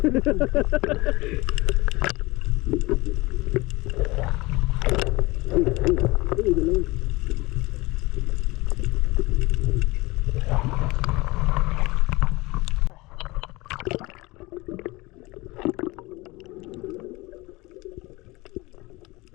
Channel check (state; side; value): quieter; right; 22.1 dB